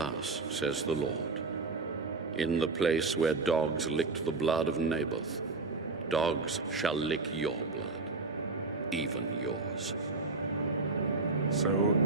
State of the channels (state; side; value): quieter; left; 3.8 dB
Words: says the Lord, in the place where dogs licked the blood of Naboth, dogs shall lick your blood, even yours. So